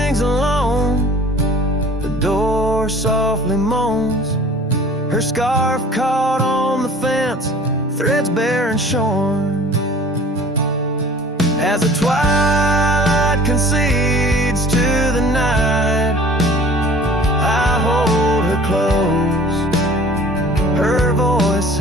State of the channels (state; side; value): normal; both; correlation 0.47